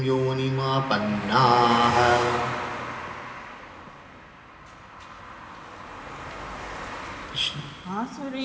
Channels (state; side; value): identical; both; correlation 1.00